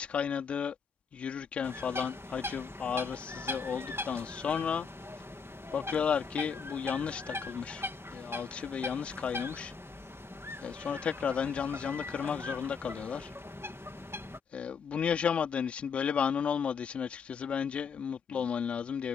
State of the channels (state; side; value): quieter; right; 6.1 dB